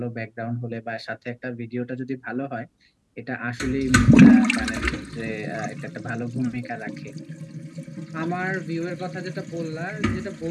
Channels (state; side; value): identical; both; correlation 1.00